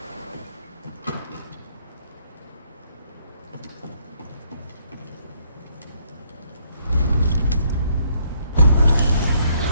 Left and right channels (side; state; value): both; inverted; correlation -0.69